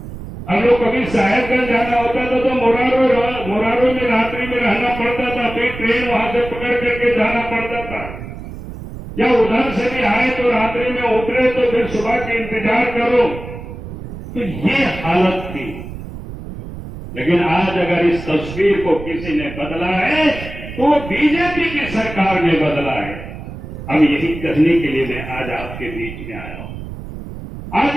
हम लोग कभी साहेबगंज जाना होता था तो मोरारो में रात्रि में रहना पड़ता था, फिर ट्रेन वहां से पकड़ करके जाना पड़ता था, या उधर से भी आए तो रात्रि में उतरे तो फिर सुबह के इंतजार करो। तो ये हालत थी। लेकिन आज अगर इस तस्वीर को किसी ने बदला है तो बीजेपी की सरकार ने बदला है। अब यही कहने के लिए मैं आज आपके बीच में आया हूं। आज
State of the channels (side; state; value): right; noise; rumble, 11 dB below the sound